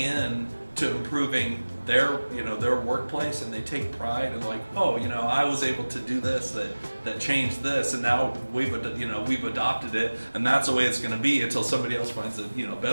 to improving their workplace, and they take pride and like, oh, I was able to do this that changed this, and now we've adopted it, and that's the way it's going to be until somebody else finds a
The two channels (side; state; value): both; inverted; correlation -1.00